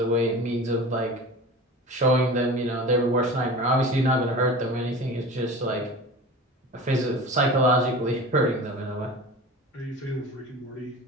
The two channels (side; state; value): both; normal; correlation 0.35